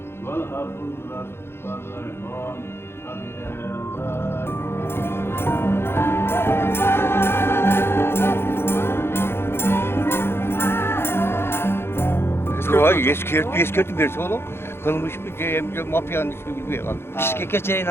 Eskirtip berse oğlum. Kılmış bir mafyanın ismi bilmiyor kaldı. Bişkek'e çayın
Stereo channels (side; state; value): right; late; 0.12 ms